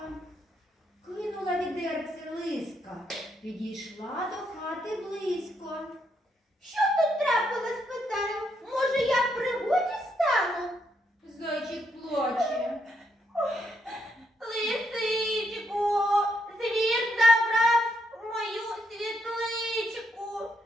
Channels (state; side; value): normal; both; correlation 0.77